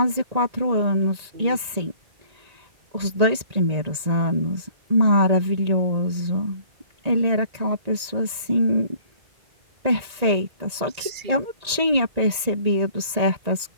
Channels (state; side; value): late; left; 1.8 ms